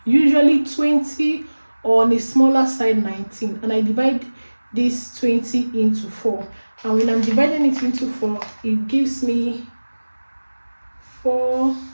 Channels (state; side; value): inverted; both; correlation -1.00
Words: usually 20, or on a smaller side 19, and I divide this 20 into 4. And when I'm dividing it into 4, it gives me 4,